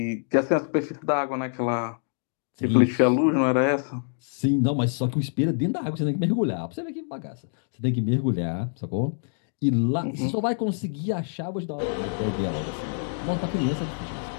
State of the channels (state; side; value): silent; right; digital silence